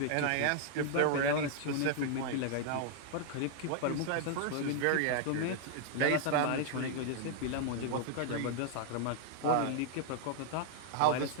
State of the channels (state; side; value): different; both; correlation 0.00